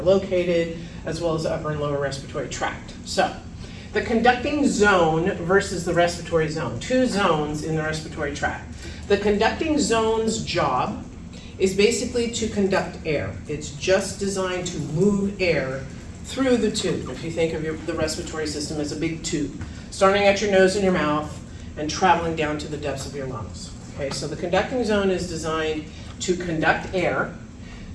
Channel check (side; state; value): both; identical; correlation 1.00